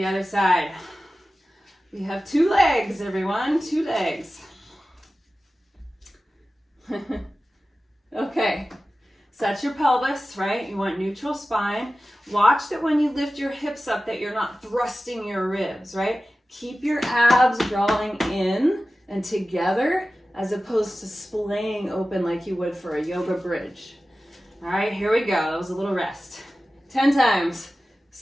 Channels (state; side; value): normal; both; correlation 0.95